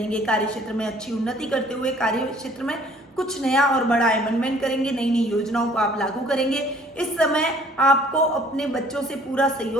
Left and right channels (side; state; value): both; normal; correlation 0.56